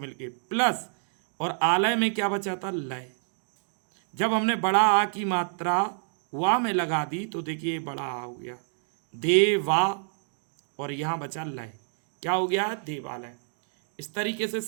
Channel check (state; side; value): silent; left; digital silence